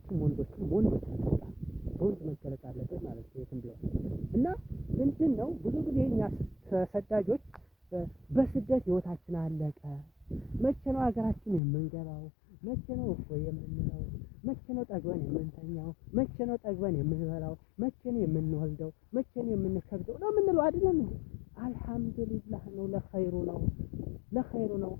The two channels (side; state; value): right; drops out; at 11.6 s